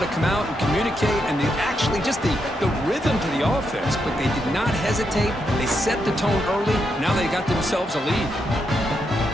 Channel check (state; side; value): normal; both; correlation 0.82